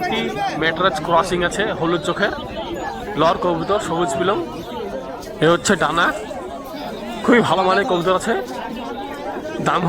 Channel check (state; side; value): identical; both; correlation 1.00